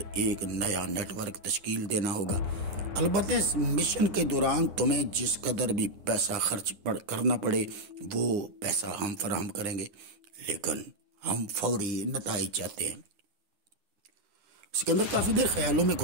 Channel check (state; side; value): late; left; 9.8 ms